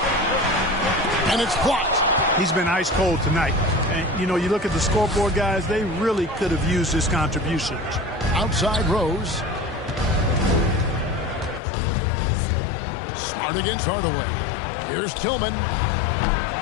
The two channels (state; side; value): drops out; right; at 11.6 s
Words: And it's blocked. He's been ice cold tonight. And, you know, you look at the scoreboard, guys, they really could have used his contributions. Outside Rose. Smart against Hardaway. Here's Tillman.